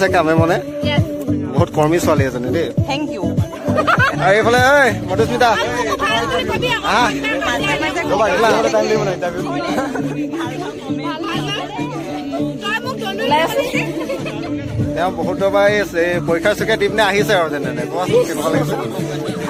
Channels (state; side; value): identical; both; correlation 1.00